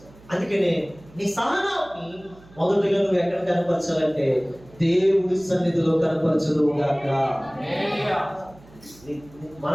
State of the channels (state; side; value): noise; right; hum, 24 dB below the sound